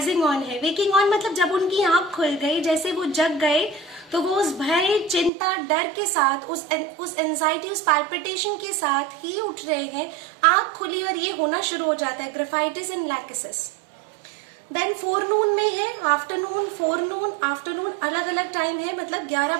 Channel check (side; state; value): left; drops out; at 5.3 s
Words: ऑन है। वेकिंग ऑन मतलब जब उनकी आंख खुल गई, जैसे वो जग गए, तो वो उस भय, चिंता, डर के साथ, उस एंजाइटी, उस पैल्पिटेशन के साथ ही उठ रहे हैं, आंख खुली और ये होना शुरू हो जाता है graphites and lachesis. Then forenoon में है, आफ्टरनून, फोरनून, आफ्टरनून अलग अलग टाइम है, मतलब 11